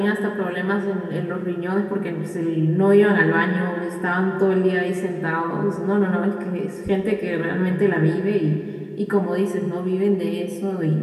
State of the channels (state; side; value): identical; both; correlation 1.00